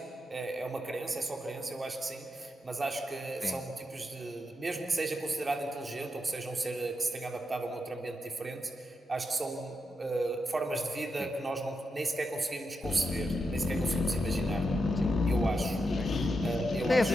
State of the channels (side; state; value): both; normal; correlation 0.85